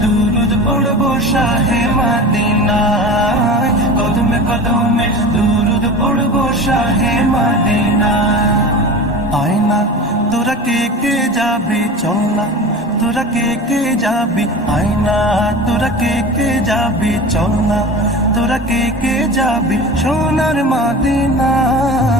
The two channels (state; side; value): normal; both; correlation 0.33